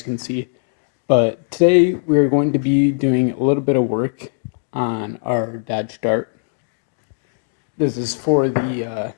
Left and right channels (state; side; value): silent; right; digital silence